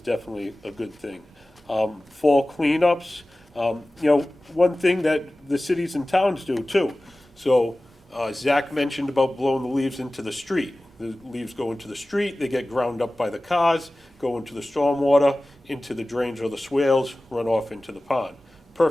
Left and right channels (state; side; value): normal; both; correlation 0.97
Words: definitely a good thing. Fall cleanups, one thing that the cities and towns do too. So Zach mentioned about blowing the leaves into the street. The leaves go into the street, they get ground up by the cars, go into the stormwater, into the drains or the swales, run off into the pond.